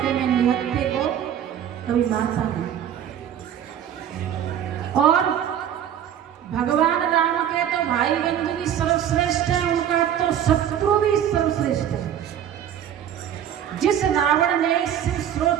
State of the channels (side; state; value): left; quieter; 9.8 dB